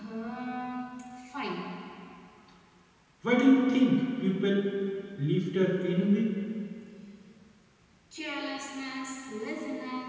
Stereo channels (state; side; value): identical; both; correlation 1.00